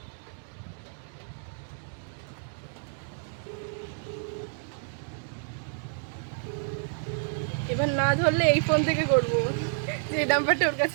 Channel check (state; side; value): silent; left; digital silence